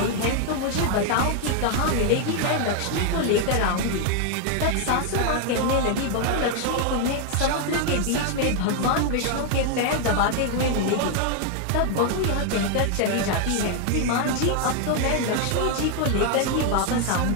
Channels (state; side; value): different; both; correlation 0.00